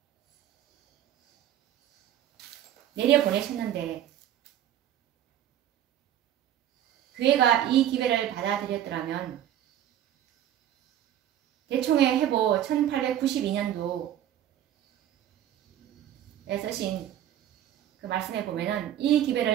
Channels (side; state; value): left; quieter; 11.3 dB